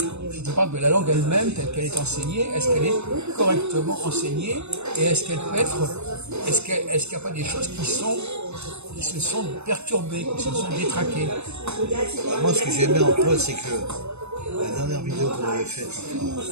Je te parle de la langue elle-même, telle qu'elle est enseignée. Est-ce qu'elle est correctement enseignée? Et est-ce qu'elle peut être... Est-ce qu'il n'y a pas des choses qui se sont perturbées, qui se sont détraquées? Moi, ce que j'ai aimé en toi, c'est que la dernière vidéo qu'on avait faite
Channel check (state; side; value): late; left; 0.81 ms